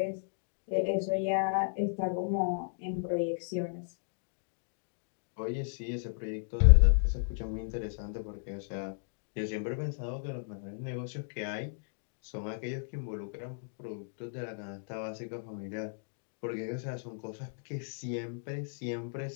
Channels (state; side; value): silent; right; digital silence